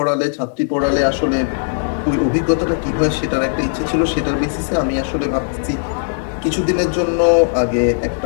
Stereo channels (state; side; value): silent; right; 60 dB below the other